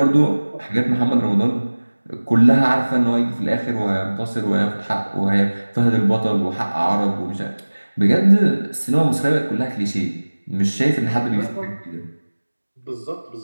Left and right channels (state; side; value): inverted; both; correlation -1.00